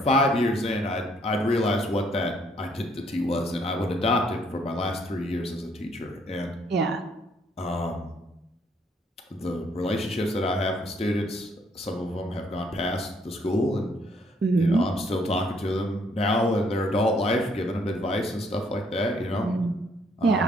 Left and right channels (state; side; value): normal; both; correlation 0.67